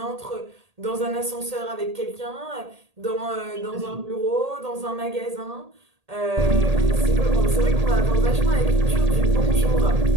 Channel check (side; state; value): left; late; 1.8 ms